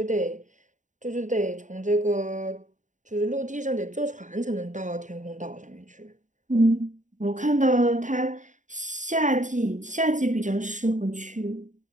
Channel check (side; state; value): left; late; 0.36 ms